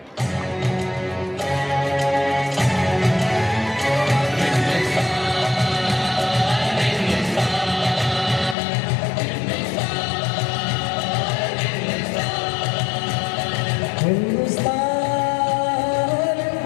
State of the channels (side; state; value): right; drops out; at 8.6 s